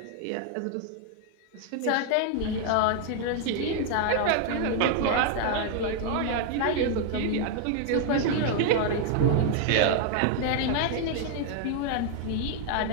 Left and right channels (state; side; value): different; both; correlation 0.00